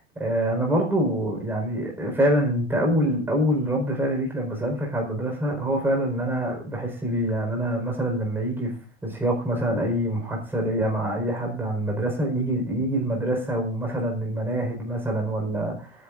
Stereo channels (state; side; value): normal; both; correlation 0.38